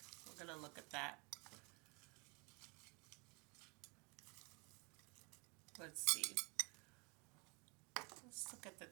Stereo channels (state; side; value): quieter; left; 29.6 dB